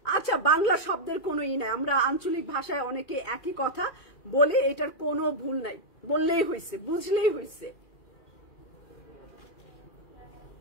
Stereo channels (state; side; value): late; right; 2.2 ms